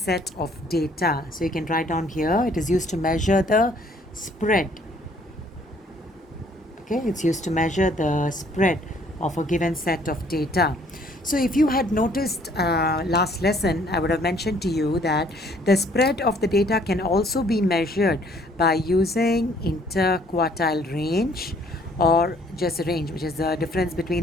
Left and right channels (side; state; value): both; normal; correlation 0.61